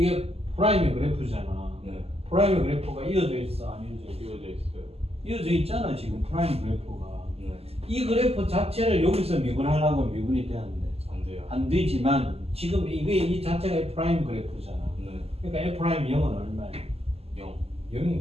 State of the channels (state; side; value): late; left; 0.29 ms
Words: 프라임의 그래프잖아. 네. 프라임의 그래프가 이어져 있어, 안 이어져 있어? 이어져 있어요. 이어져 있잖아 지금 프라임 그래프가. 네. 이 그래프 자체를 여기서 미분하려고 하면 미분이 되는데 안 돼요. 안 되지만 지금 이게 이 자체가 F 프라임 그래프잖아. 네. 그러니까 F 프라임 0은 얼마야? 0.